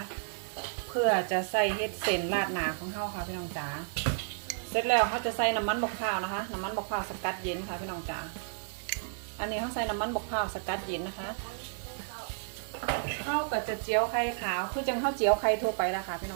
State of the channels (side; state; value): left; silent; 57 dB below the other